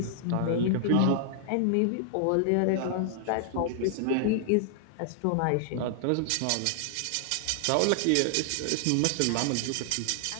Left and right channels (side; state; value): both; different; correlation 0.00